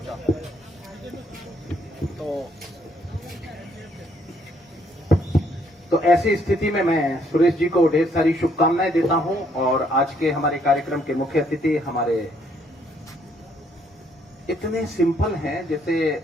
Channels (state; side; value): normal; both; correlation 0.68